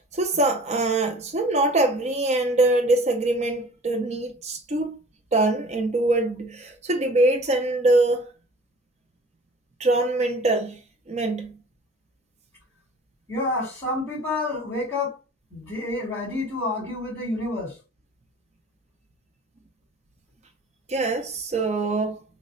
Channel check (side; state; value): both; normal; correlation 0.46